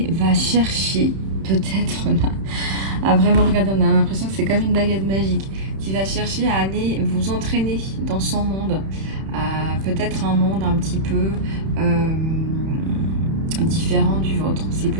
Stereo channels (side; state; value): left; late; 31 ms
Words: va chercher peut-être là à vraiment regarder. On a l'impression que c'est comme une baguette magique qui va chercher à aller vous entraîner dans son monde. Peut-être un monde un petit peu différent du vôtre, c'est